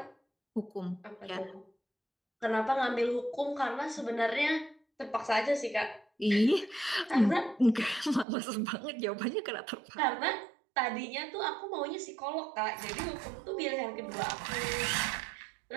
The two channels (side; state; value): left; drops out; at 8.2 s